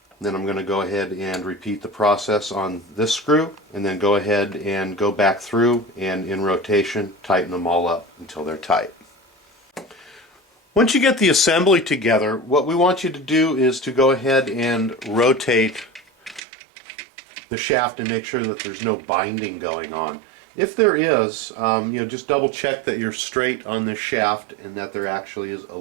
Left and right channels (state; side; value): drops out; left; at 16.4 s